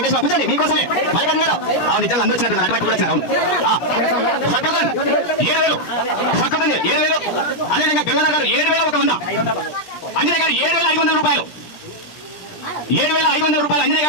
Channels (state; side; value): late; right; 17 ms